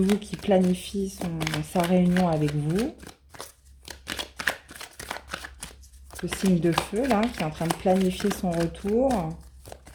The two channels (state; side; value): identical; both; correlation 1.00